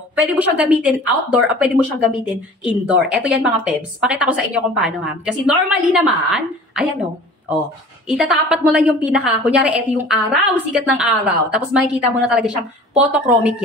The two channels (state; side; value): normal; both; correlation 0.44